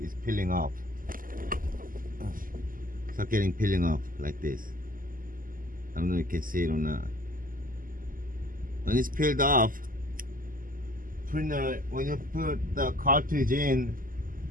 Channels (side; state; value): left; late; 0.41 ms